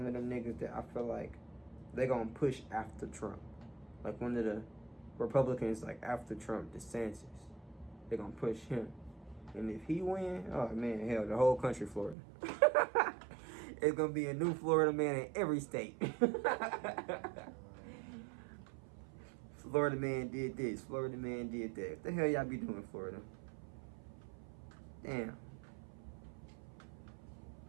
of them niggas that I feel like they gonna push after Trump. Like one of the Republicans, like after Trump, DeSantis. They gonna push him. And if he win, oh man, hell, the whole country Florida. It's gonna be a new Florida man in every state. Florida man did this. Florida man did that. What the hell y'all be doing, Florida? Damn.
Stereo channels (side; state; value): left; drops out; at 12.2 s